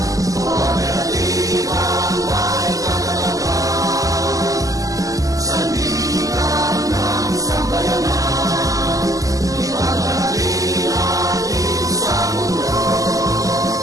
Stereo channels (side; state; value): left; late; 0.17 ms